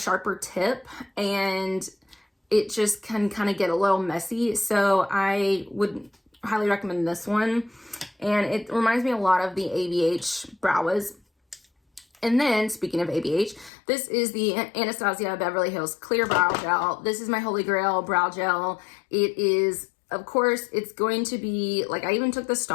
tip, and it just can kind of get a little messy. So I would highly recommend this one, and it reminds me a lot of the ABH Brow Wiz. And then, speaking of ABH, this is the Anastasia Beverly Hills Clear Brow Gel. This is my holy grail brow gel. It is, of course, it's going to be, like, I even took the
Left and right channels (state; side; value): drops out; right; at 13.7 s